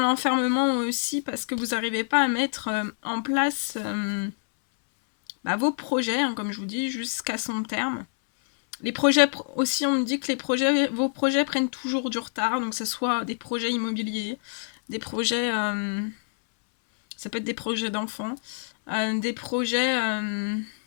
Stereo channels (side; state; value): right; silent; 61 dB below the other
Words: aussi parce que vous n'arrivez pas à mettre en place vos projets, hein, comme je vous dis, jusqu'à son terme. Les projets aussi, on me dit que vos projets prennent toujours du retard, donc que ce soit des projets immobiliers, des projets, ça peut être des projets d'enfants, des projets